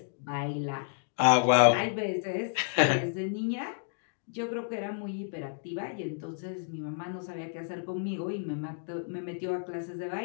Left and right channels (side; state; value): right; silent; digital silence